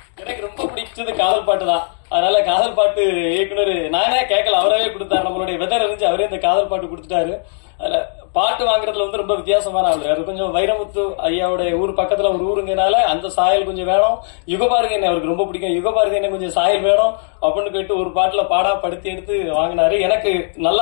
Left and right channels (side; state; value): right; silent; 59 dB below the other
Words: எனக்கு ரொம்ப பிடிச்சது காதல் பாட்டு தான். அதனால காதல் பாட்டு இயக்குனர் நானே கேட்கல, அவரவே கொடுத்தாரு. நம்மளுடைய வெதர் அறிஞ்சு அவரே இந்த காதல் பாட்டு கொடுத்துட்டாரு. அதுல பாட்டு வாங்குறதுல வந்து ரொம்ப வித்தியாசமான ஆளு. அது கொஞ்சம் வைரமுத்து ஐயாவுடைய ஊர் பக்கத்துல ஒரு ஊருங்கனால அந்த சாயல் கொஞ்சம் வேணும். யுகபாரதி என்ன அவருக்கு ரொம்ப பிடிக்கும், யுகபாரதி என்ன கொஞ்சம் சாயல் வேணும் அப்படின்னு கேட்டு ஒரு பாட்டுல பாடா படுத்தி எடுத்து வாங்கினாரு. எனக்கு